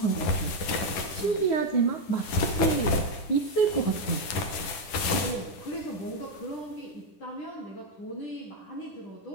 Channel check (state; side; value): late; right; 10 ms